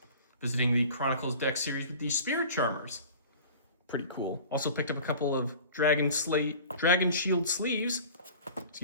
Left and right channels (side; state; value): both; inverted; correlation -0.42